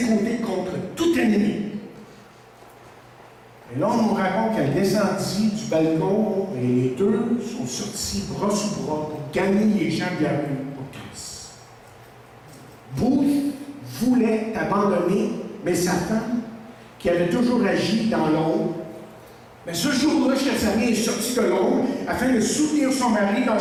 côtés contre tout ennemi. Et là, on nous raconte qu'elle descendit du balcon et les deux sont sortis bras sous bras pour gagner les gens de la rue pour Christ. Booth voulait abandonner, mais sa femme, qui avait toujours agi dans l'ombre, mais ce jour-là, chers amis, est sortie de l'ombre afin de soutenir son mari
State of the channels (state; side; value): identical; both; correlation 1.00